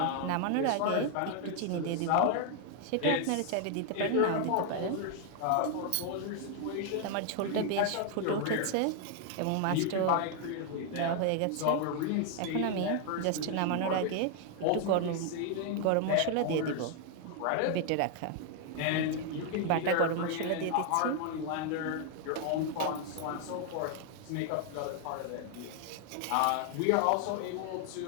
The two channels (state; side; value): different; both; correlation 0.00